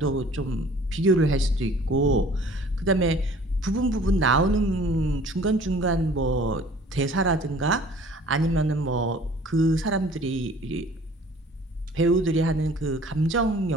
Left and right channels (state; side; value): normal; both; correlation 0.51